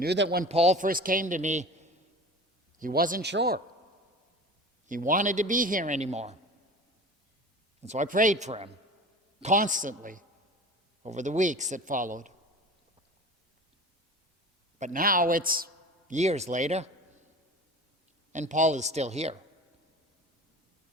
when Paul first came to me, he wasn't sure. He wanted to be here anymore. And so I prayed for him constantly over the weeks that followed. But now it's years later, and Paul is still here.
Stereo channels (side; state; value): both; normal; correlation 0.37